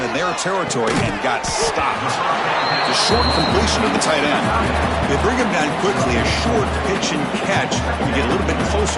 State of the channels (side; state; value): both; identical; correlation 1.00